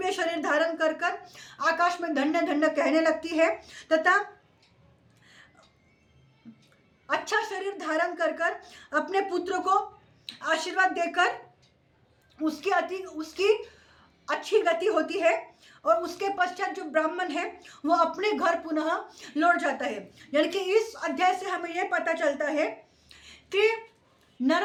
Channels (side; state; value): both; identical; correlation 1.00